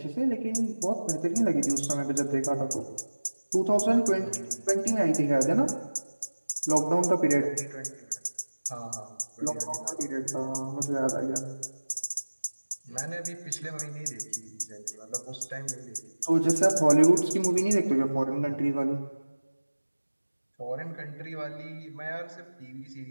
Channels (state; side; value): inverted; both; correlation -1.00